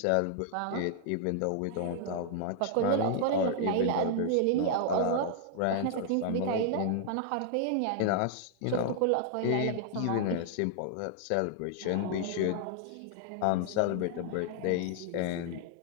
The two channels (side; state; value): both; different; correlation -0.01